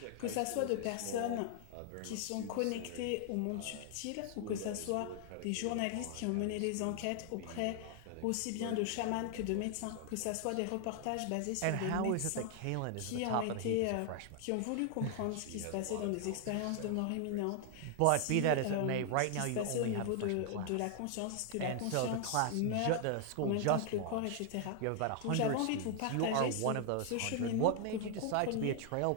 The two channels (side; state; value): both; different; correlation 0.00